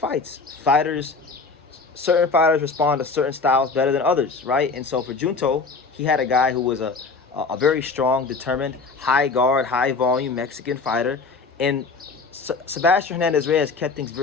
Certain fighters respond to certain styles better than others, right? And so for Junto, he had a guy who was a very strong, determined, high guard, high volume Mexican fighter. And Sebastian Hernandez-Reyes kept things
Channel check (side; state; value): right; quieter; 4.3 dB